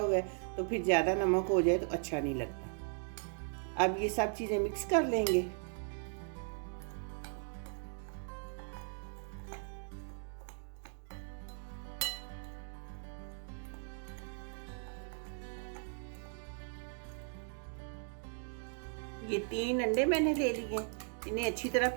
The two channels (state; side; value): silent; left; 53 dB below the other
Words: है तो फिर ज़्यादा नमक हो जाए तो अच्छा नहीं लगता। अब ये सब चीज़ें मिक्स कर लेंगे। ये 3 अंडे मैंने ले लिए, इन्हें अच्छी तरह